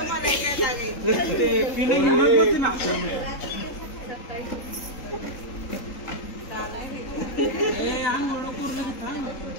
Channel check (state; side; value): late; right; 3.8 ms